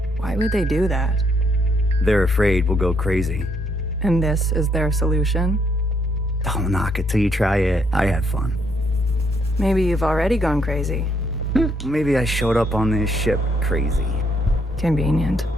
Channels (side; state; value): both; normal; correlation 0.72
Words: Why would they do that? They're afraid we'll go crazy. And this is their solution? Don't knock it till you try it. I had fun. Maybe you've already gone crazy. Maybe I showed up on this ship crazy. Convenient.